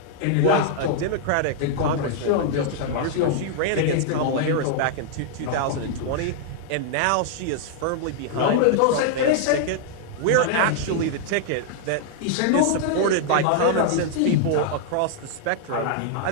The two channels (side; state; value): both; different; correlation -0.01